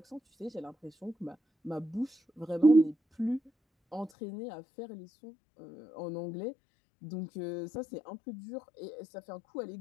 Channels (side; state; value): right; drops out; at 4.1 s